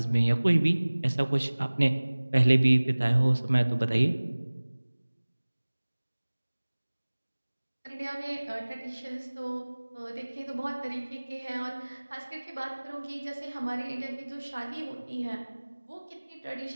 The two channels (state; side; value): inverted; both; correlation -1.00